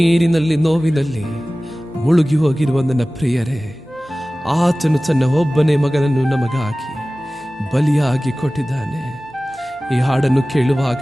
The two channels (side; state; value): both; normal; correlation 0.97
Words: ನೋವಿನಲ್ಲಿ ಮುಳುಗಿ ಹೋಗಿರುವ ನನ್ನ ಪ್ರಿಯರೇ, ಆತನು ತನ್ನ ಒಬ್ಬನೇ ಮಗನನ್ನು ನಮಗಾಗಿ ಬಲಿಯಾಗಿ ಕೊಟ್ಟಿದ್ದಾನೆ. ಈ ಹಾಡನ್ನು